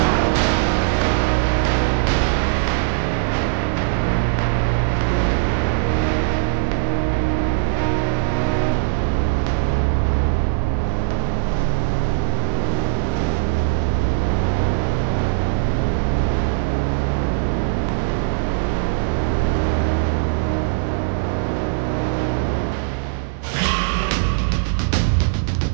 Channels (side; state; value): left; silent; digital silence